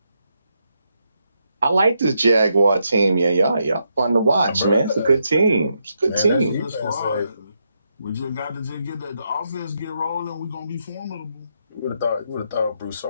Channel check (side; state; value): both; inverted; correlation -0.81